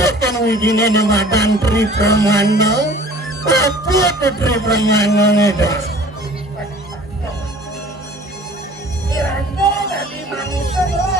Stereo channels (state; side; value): normal; both; correlation 0.48